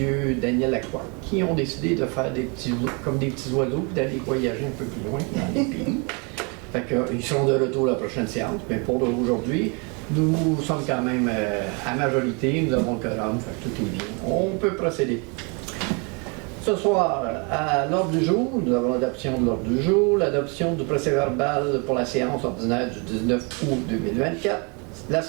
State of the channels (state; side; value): quieter; left; 33.1 dB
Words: Daniel Lacroix, qui ont décidé de faire comme des petits oiseaux et d'aller voyager un peu plus loin dans les pays. Fait qu'ils seront de retour à la prochaine séance. Mais pour aujourd'hui, nous sommes quand même à majorité, nous avons le quorum, fait que tout est bien. On peut procéder. Ce soir, à l'ordre du jour, nous avons l'adoption de l'ordre du jour, l'adoption du procès-verbal pour la séance ordinaire du 19 août 2024, la